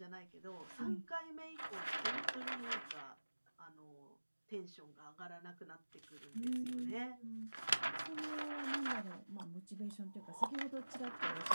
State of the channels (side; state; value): both; inverted; correlation -1.00